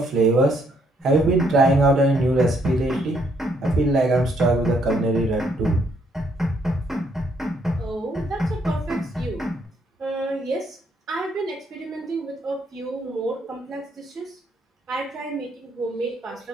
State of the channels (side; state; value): both; normal; correlation 0.71